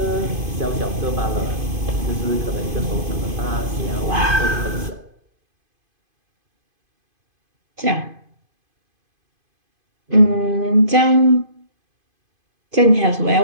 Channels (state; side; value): late; left; 2.5 ms